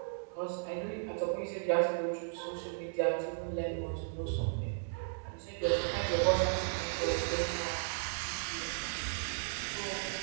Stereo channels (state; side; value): silent; left; digital silence